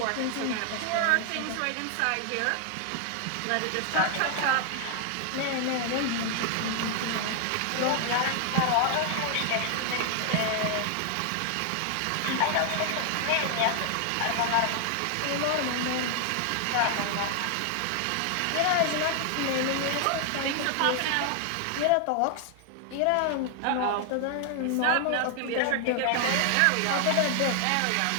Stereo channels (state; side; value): different; both; correlation 0.00